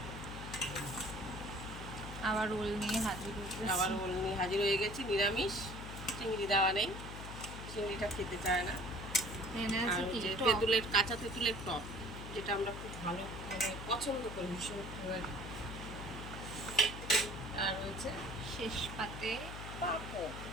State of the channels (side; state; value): left; noise; hum, 9 dB below the sound